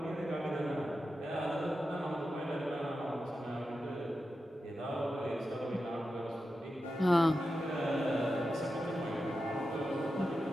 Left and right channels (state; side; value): normal; both; correlation 0.90